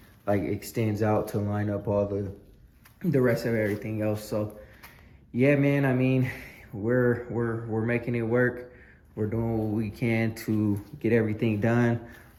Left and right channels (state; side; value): identical; both; correlation 1.00